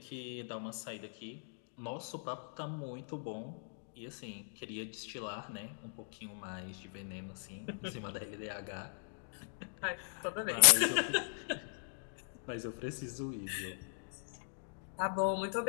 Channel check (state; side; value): silent; right; digital silence